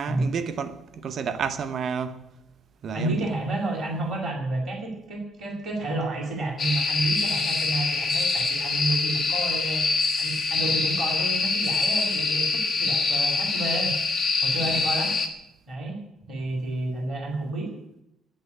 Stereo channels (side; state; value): both; normal; correlation 0.74